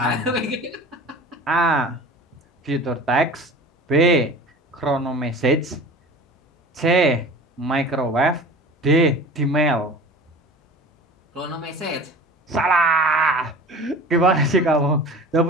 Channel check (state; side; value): normal; both; correlation 0.39